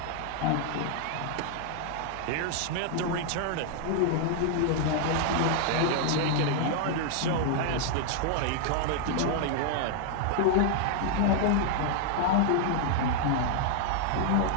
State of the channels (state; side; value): different; both; correlation 0.00